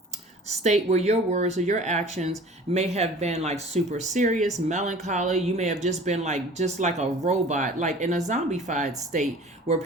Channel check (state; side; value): normal; both; correlation 0.45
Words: state where your words or your actions may have been like super serious, melancholy. You may have just been just like a robot, like in a zombified state where